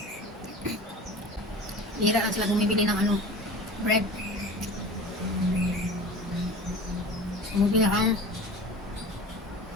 Hira lang sila bumibili ng ano, bread. Bumibili ang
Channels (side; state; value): both; normal; correlation 0.37